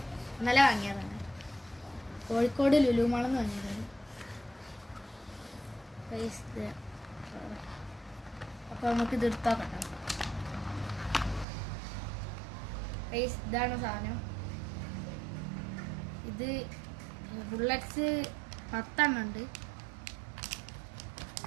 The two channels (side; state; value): left; drops out; at 11.5 s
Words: ഇന്നലെ വാങ്ങിയതാണ്, കോഴിക്കോട് ലുലു മാളിൽ നിന്ന് വാങ്ങിയതാണ് ഗൈസ്. അപ്പോൾ നമുക്കിത് എടുത്തോക്കാം ഗൈസ്. ഇതാണ് സാധനം. ഇത് ബുള്ളറ്റ്സ് 10 എണ്ണം ഉണ്ട്.